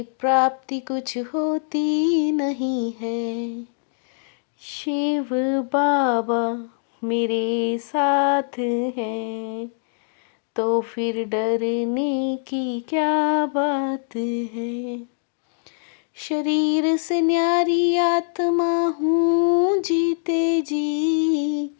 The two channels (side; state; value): right; silent; digital silence